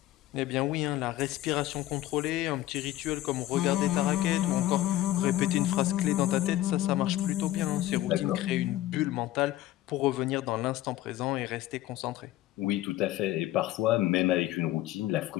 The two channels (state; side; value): quieter; right; 14.7 dB